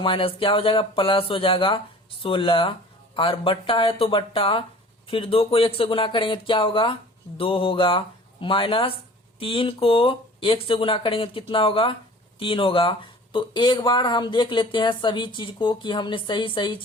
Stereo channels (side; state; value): both; normal; correlation 0.46